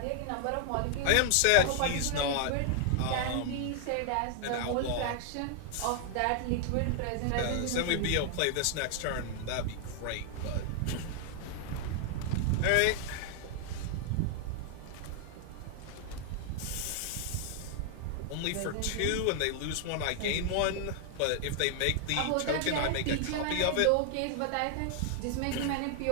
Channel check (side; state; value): both; different; correlation 0.00